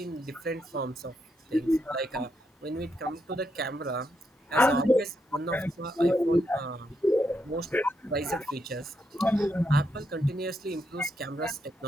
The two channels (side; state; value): both; normal; correlation 0.80